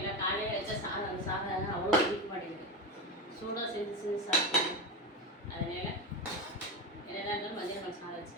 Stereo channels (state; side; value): normal; both; correlation 0.17